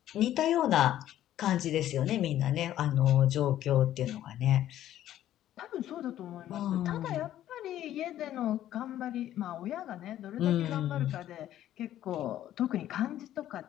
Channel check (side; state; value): right; quieter; 12.4 dB